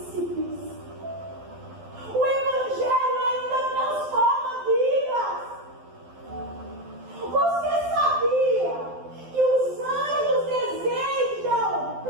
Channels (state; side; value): late; left; 12 ms